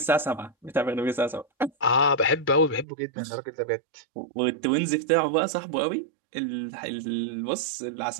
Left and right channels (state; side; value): drops out; left; at 2.9 s